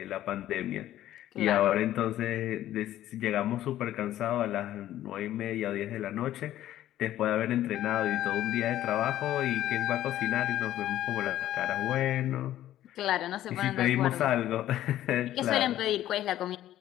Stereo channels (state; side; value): quieter; right; 13.1 dB